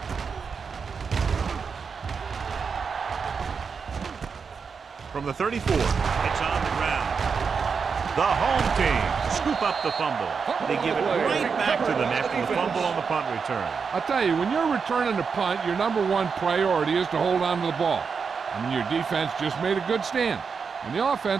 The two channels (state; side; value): quieter; left; 5.7 dB